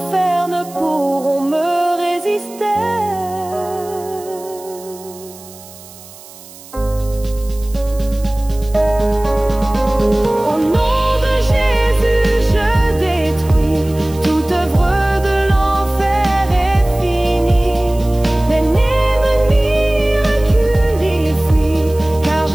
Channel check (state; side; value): noise; right; hiss, 20 dB below the sound